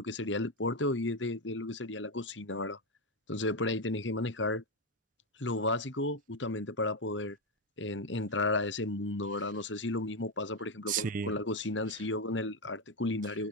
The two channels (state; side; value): normal; both; correlation 0.08